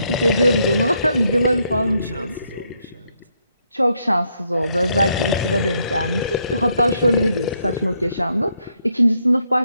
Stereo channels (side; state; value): both; inverted; correlation -0.76